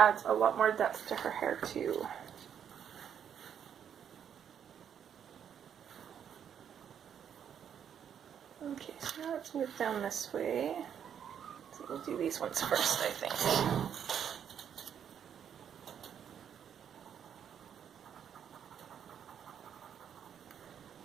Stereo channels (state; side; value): quieter; left; 8.6 dB